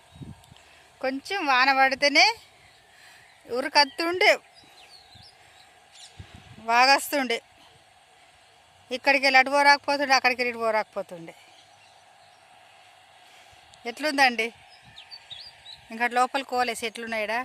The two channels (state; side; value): identical; both; correlation 1.00